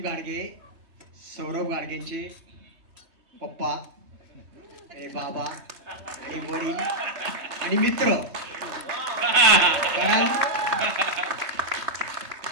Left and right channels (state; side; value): late; left; 3.3 ms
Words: गाडगे, सौरभ गाडगेंचे पप्पा आणि बाबा आणि वडील आणि मित्र. कारण